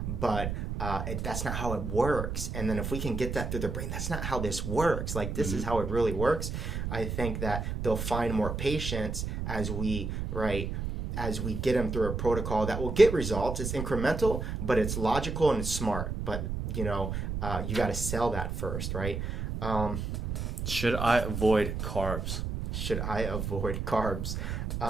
But that's not how it works. And then if we can get that through their brain, that's not how this works. Like, this is how it really works. I think that they'll find more patience as we get them through a protocol that will get results. It's incremental, but it's logical and it's smart. But, you got to sell that first, right? Should I avoid carbs?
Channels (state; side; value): noise; right; rumble, 3 dB below the sound